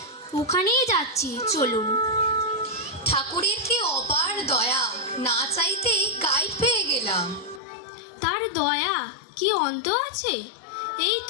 ওখানেই যাচ্ছি, চলুন। ঠাকুরের কি অপার দয়া, না চাইতেই গাইড পেয়ে গেলাম। তার দয়া কি অন্ত আছে? এই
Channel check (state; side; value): drops out; right; at 7.6 s